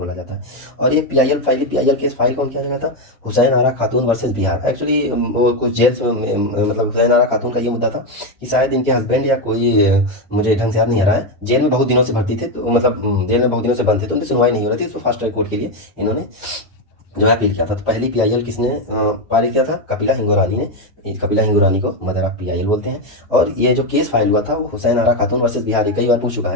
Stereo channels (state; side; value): normal; both; correlation 0.08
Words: जाता है। और ये पीआईएल केस फाइल कौन किया गया था, हुसैन आरा खातून वर्सेस बिहार। एक्चुअली वो कुछ जेल में, मतलब हुसैन आरा खातून का ये मुद्दा था कि शायद इनके हस्बैंड या कोई, मुझे ढंग से याद नहीं आ रहा है, जेल में बहुत दिनों से भर्ती थे, तो मतलब जेल में बहुत दिनों से बंद थे, तो उनकी सुनवाई नहीं हो रही थी, तो फास्ट ट्रैक कोर्ट के लिए इन्होंने जो है अपील किया था। तो पहली पीआईएल किसने पारित किया था, कपिला हिंगो रानी ने। कपिला हिंगो रानी को मदर ऑफ पीआईएल बोलते हैं। और ये जो केस फाइल हुआ था वो हुसैन आरा खातून वर्सेस बिहार। ये कई बार पूछ चुका